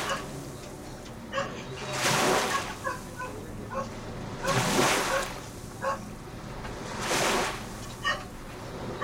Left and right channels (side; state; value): both; identical; correlation 1.00